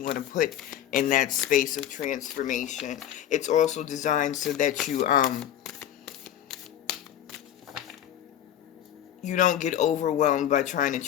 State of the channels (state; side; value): quieter; right; 10.9 dB